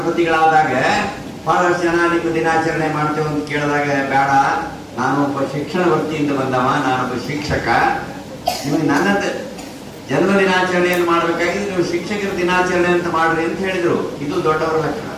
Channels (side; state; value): both; identical; correlation 1.00